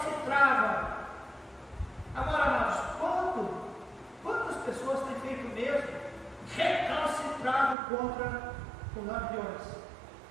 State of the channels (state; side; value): drops out; left; at 7.8 s